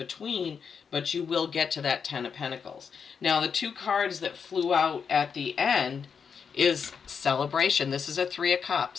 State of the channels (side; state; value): right; quieter; 6.4 dB